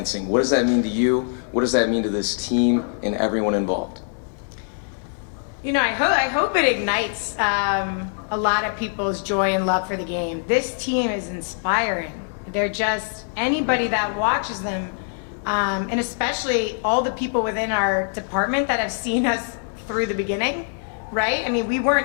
What does that mean to you? What does that mean to this team and everyone involved? I hope it ignites a lot of people's joy and love for the game. This team is inspiring. They're just, anybody that watches them, and especially all the people within our department that have seen us through the beginning, right? We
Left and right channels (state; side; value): silent; right; 63 dB below the other